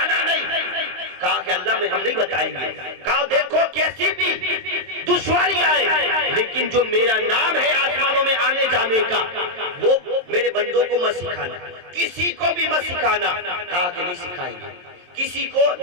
نہیں۔ کہا کہ اللہ میں ہم نہیں بتائیں گے۔ کہا دیکھو کیسی بھی دشواری آئے لیکن جو میرا نام ہے آسمانوں میں آنے جانے کا وہ میرے بندوں کو مت سکھانا، کسی کو بھی مت سکھانا۔ کہا کہ نہیں سکھائیں گے، کسی کو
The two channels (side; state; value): left; late; 23 ms